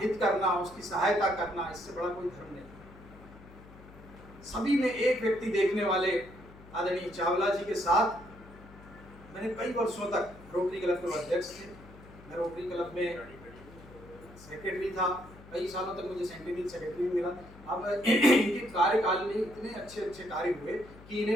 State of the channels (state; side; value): noise; left; hum, 20 dB below the sound